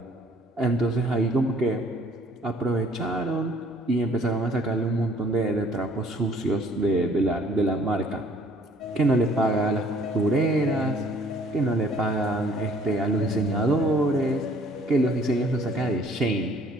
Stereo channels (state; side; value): normal; both; correlation 0.58